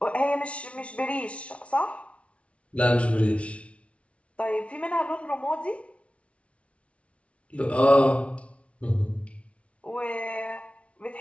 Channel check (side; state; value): right; late; 0.062 ms